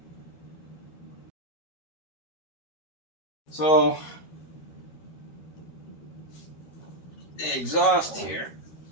So the exhaust here,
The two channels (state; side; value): late; right; 13 ms